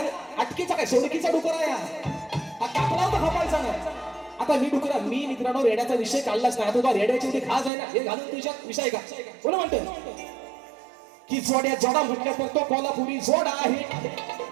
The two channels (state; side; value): drops out; left; at 7.7 s